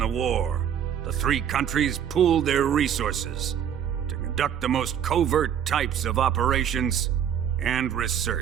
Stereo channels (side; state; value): left; quieter; 9.0 dB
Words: war, the three countries pooled their resources to conduct the most covert types of operations and